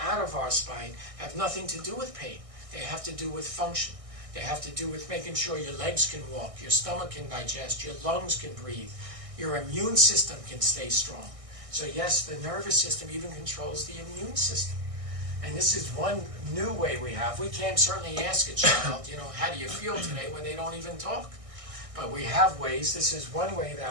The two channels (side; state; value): left; late; 1.6 ms